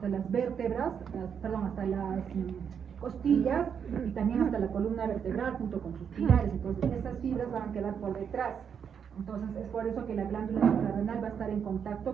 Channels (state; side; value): quieter; left; 7.4 dB